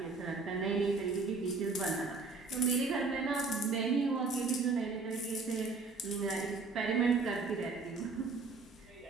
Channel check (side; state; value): left; quieter; 4.0 dB